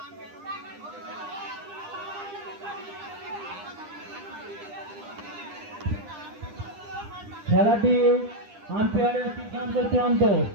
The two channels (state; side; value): late; left; 9.9 ms